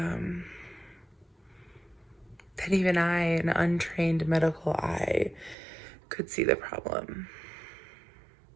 that even I, an untrained medical eye, could see the problem.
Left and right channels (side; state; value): left; drops out; at 5.6 s